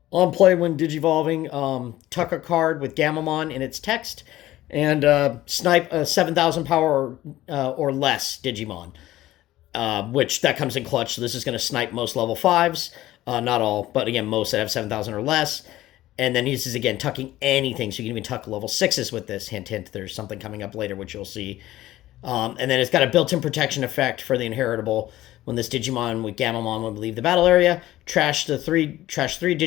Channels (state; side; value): quieter; right; 15.4 dB